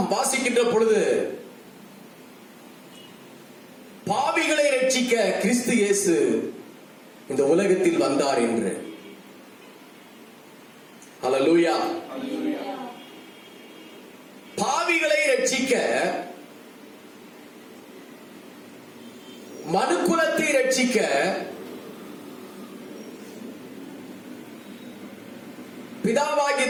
வாசிக்கின்ற பொழுது பாவிகளை ரட்சிக்க கிறிஸ்து இயேசு இந்த உலகத்தில் வந்தார் என்று. ஹல்லேலூயா. பாவிகளை ரட்சிக்க, மனுக்குலத்தை ரட்சிக்க பிதாவாகிய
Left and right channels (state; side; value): identical; both; correlation 1.00